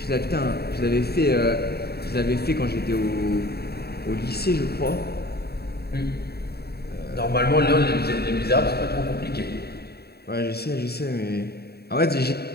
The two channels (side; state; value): right; late; 0.47 ms